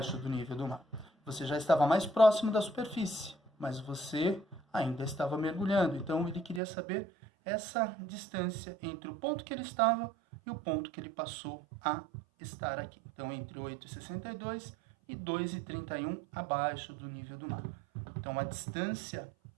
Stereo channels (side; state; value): left; drops out; at 6.6 s